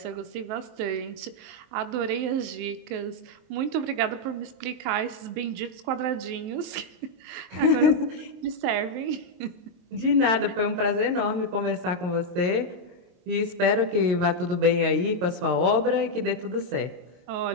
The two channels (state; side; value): late; left; 22 ms